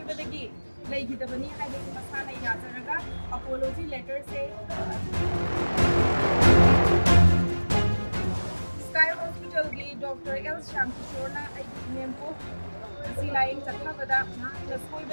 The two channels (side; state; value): both; inverted; correlation -1.00